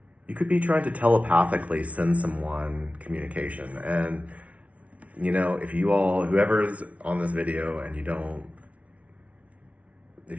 you could be trying to telepathically send someone communication. And, if whoever's on this video and if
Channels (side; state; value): left; late; 0.066 ms